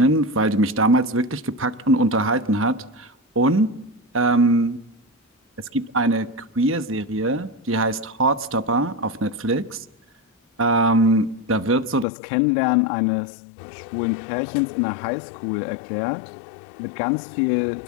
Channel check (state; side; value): drops out; right; at 12.1 s